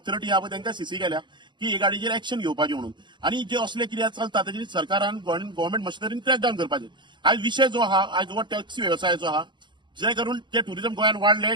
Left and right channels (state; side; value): late; left; 0.22 ms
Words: आहा पळय तांकां सीसी केल्या की हे गाडयेचेर एक्शन घेवपाचें म्हणून. आनी जे असले कितें चलता ताचेर सरकारान गव्हर्मेंट मशिनरीन क्रॅकडावन करपाचें. आयज विशय जो आहा आयज हो टॅक्सी व्यवसायाचो आहा जे करून ते ट्युरिझम गोंयांत वाडले